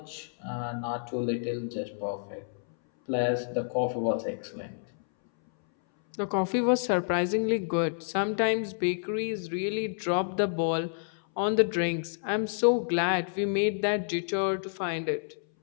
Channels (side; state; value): right; silent; 58 dB below the other